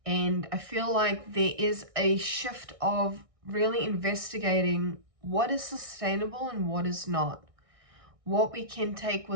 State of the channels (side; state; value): left; late; 1.6 ms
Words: And I feel like there is a shift of really investigating what is sustainable and what is not, what we can take